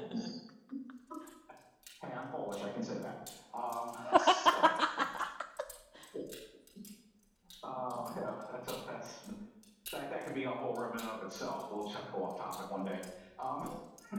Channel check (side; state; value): both; identical; correlation 1.00